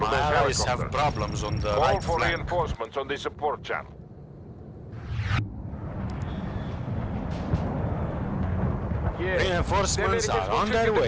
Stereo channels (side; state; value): both; identical; correlation 1.00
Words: My those allies have helicopters. problems on the Call right for flank. reinforcements on the support channel. Reinforcements are on their